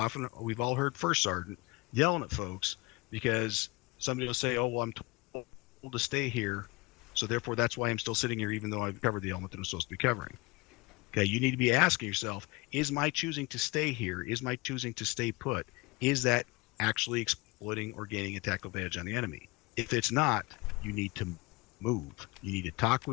all heard First Sergeant yelling at folks, because somebody will say, oh, well, I'm told to stay here, so therefore that's why I'm still sitting here even though I've covered the element that I'm supposed to be covering. Okay, you need to be asking yourself, is my choosing to stay here, is my choosing to stay put, is that actually exploiting or gaining a tactical advantage on the enemy? If it's not, you need to move. You need to talk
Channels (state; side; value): quieter; right; 24.3 dB